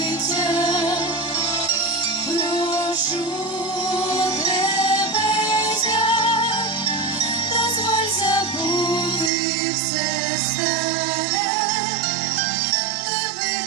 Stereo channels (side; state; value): left; drops out; at 9.3 s